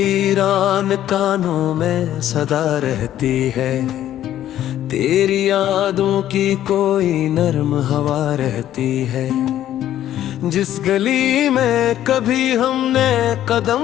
कानों में सदा रहती है, तेरी यादों की कोई नर्म हवा रहती है। जिस गली में कभी हमने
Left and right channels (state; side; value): quieter; right; 12.1 dB